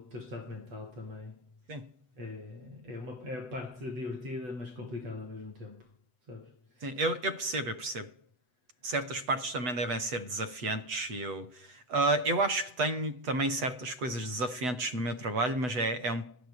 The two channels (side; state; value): left; late; 8.0 ms